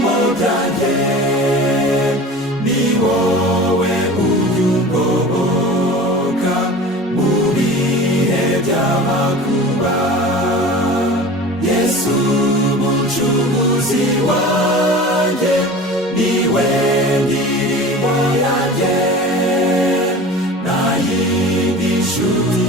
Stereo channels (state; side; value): normal; both; correlation 0.37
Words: byanjye, ni wowe ujya ungoboka mu bihe by'amakuba. Yesu mucunguzi wanjye, niwe ndirimbo yanjye, nta yindi nshuti